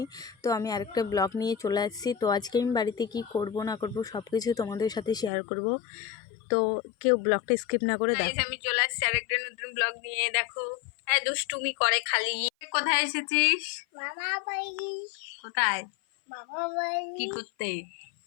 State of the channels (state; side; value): drops out; right; at 5.3 s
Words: তো আমি আরেকটা ব্লগ নিয়ে চলে আসছি। তো আজকে আমি বাড়িতে কি করব না করব সব কিছু তোমাদের সাথে শেয়ার করব। তো কেউ ব্লগটা স্কিপ না করে দেখো। আমি চলে আসছি আরেকটা নতুন ব্লগ নিয়ে। দেখো হ্যাঁ, দুষ্টুমি করে খালি। কোথায় এসেছিস? মামা বাড়ি। কোথায়? মামা বাড়ি। কি করতে?